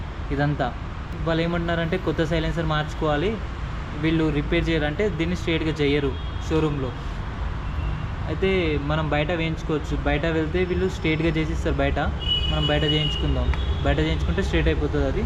ఇదంతా వాళ్ళు ఏమంటున్నారంటే కొత్త సైలెన్సర్ మార్చుకోవాలి, వీళ్ళు రిపేర్ చేయాలంటే దీన్ని స్ట్రేట్గా చేయరు షోరూంలో. అయితే మనం బయట వేయించుకోవచ్చు. బయట వెళ్తే వీళ్ళు స్ట్రేట్గా చేసిస్తారు. బయట మనం బయట చేయించుకుందాం. బయట చేయించుకుంటే స్ట్రేట్ అయిపోతుంది. అది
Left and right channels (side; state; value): both; identical; correlation 1.00